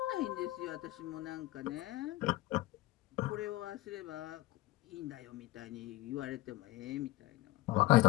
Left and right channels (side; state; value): right; quieter; 17.9 dB